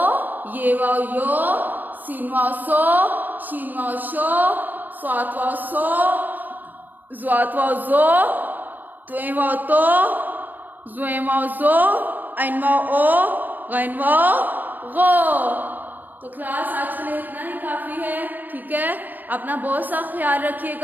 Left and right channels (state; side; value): late; left; 0.088 ms